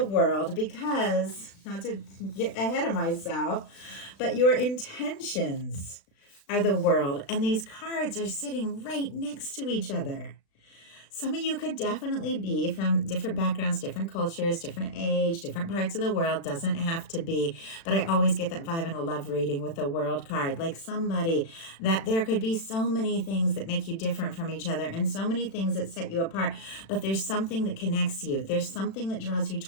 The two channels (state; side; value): late; right; 36 ms